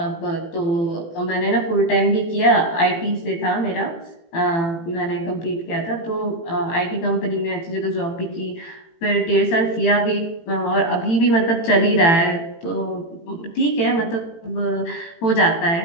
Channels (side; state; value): right; late; 18 ms